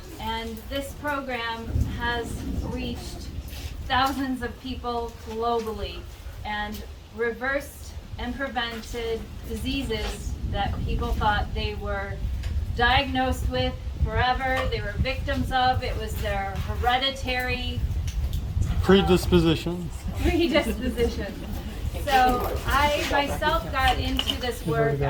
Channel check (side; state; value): both; identical; correlation 1.00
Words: And this program has reached thousands of people globally and reversed and prevented diseases that people thought they were diagnosed with forever, they were victims of. It was their hereditary predisposition. So I myself got into this work.